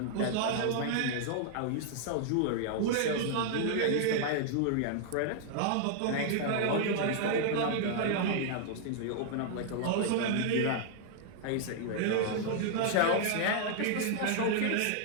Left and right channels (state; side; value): different; both; correlation -0.01